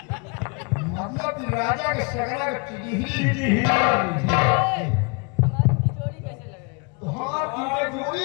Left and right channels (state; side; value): quieter; right; 32.1 dB